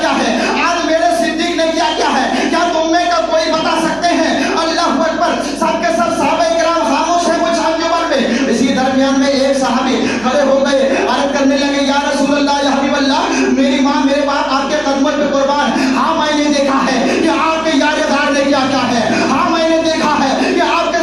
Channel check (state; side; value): noise; right; hum, 22 dB below the sound